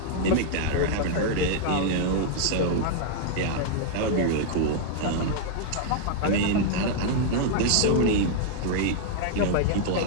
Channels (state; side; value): different; both; correlation -0.01